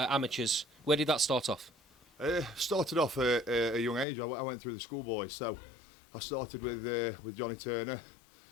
amateurs. Where did that start off? Started off at a young age. I went through the schoolboys. So I started with Johnny Turner,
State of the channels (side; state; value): right; drops out; at 4.0 s